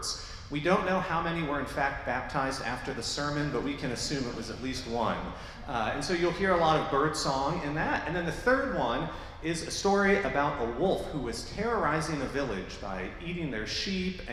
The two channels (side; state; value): both; identical; correlation 1.00